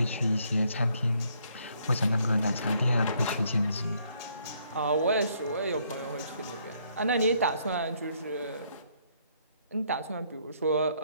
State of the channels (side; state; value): both; inverted; correlation -0.69